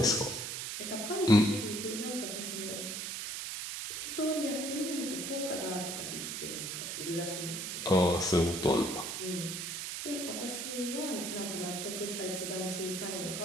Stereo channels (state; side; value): noise; right; hiss, 4 dB below the sound